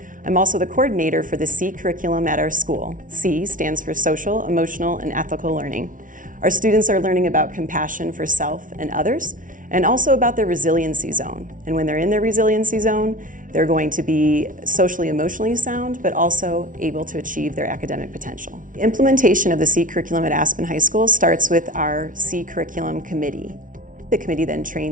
I'm also the coordinator for the C curriculum at our school. C stands for Social, Emotional, and Ethical Learning. Our students are learning about compassion for self and others, and also about their resiliency zone. And when they're in their resiliency zone, they're going to be socially, emotionally sound, but also able to achieve their academic potential. The implementation of the C curriculum at Aspen High School starts with our C curriculum committee. The committee then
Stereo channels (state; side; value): late; left; 0.38 ms